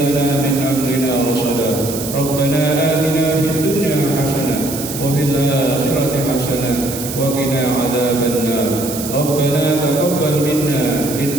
لنا من أمرنا رشدا. ربنا آتنا في الدنيا حسنة وفي الآخرة حسنة وقنا عذاب النار. ربنا تقبل منا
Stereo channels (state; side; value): noise; right; hiss, 8 dB below the sound